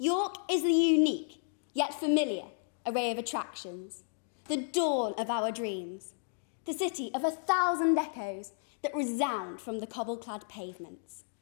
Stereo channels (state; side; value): silent; right; digital silence